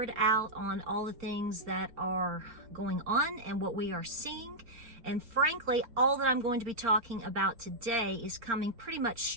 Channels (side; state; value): left; late; 4.4 ms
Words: out on all the things that are going on and what we are seeing. And frankly, all that I'm going to be talking about today is coming pretty much